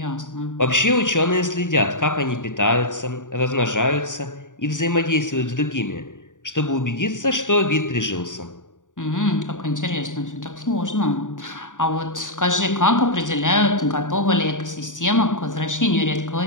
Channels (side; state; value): right; late; 0.87 ms